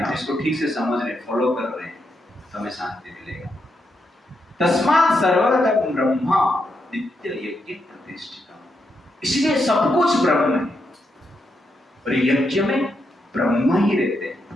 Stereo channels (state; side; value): normal; both; correlation 0.82